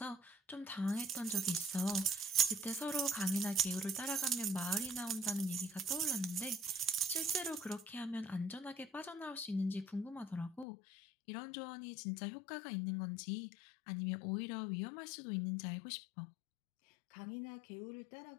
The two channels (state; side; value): drops out; right; at 10.7 s